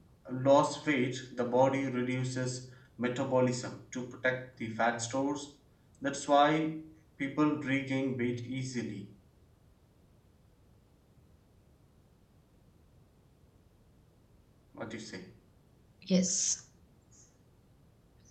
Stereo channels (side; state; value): both; identical; correlation 1.00